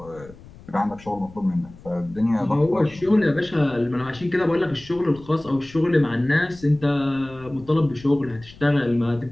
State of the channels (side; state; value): left; noise; rumble, 21 dB below the sound